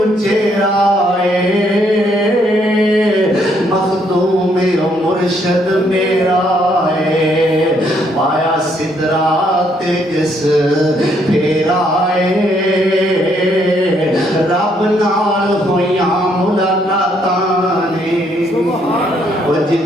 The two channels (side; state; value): both; normal; correlation 0.70